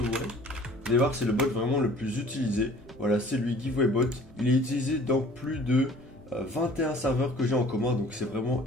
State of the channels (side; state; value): both; normal; correlation 0.50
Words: Vous allez voir c'est le bot vraiment le plus utilisé. Voilà, c'est lui, Giveaway Bot. Il est utilisé dans plus de 21 serveurs que j'ai en commun, donc c'est vraiment